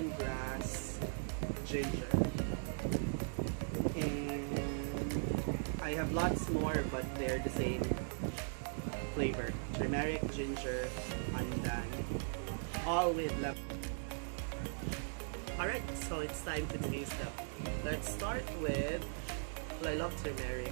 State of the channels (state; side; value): silent; left; digital silence